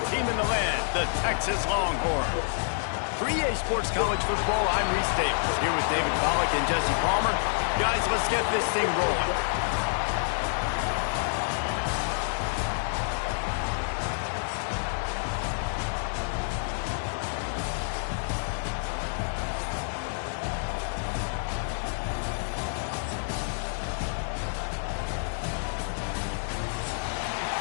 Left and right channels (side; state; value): right; silent; 59 dB below the other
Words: team in the land, the Texas Longhorns. For EA Sports College Football, I'm Reese Davis, here with David Pollack and Jesse Palmer. Guys, let's get this thing rolling.